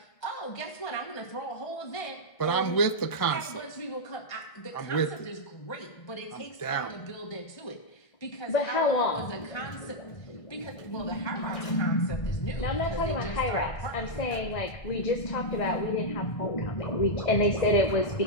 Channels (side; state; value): right; late; 1.6 ms